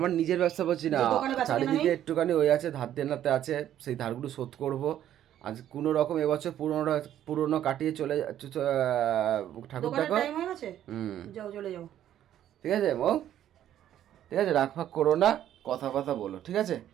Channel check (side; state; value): left; quieter; 11.3 dB